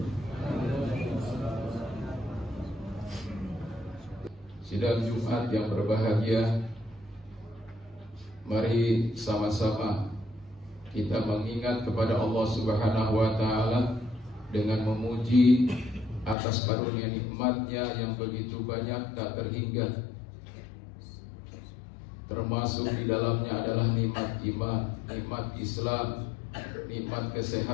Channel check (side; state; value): right; drops out; at 16.4 s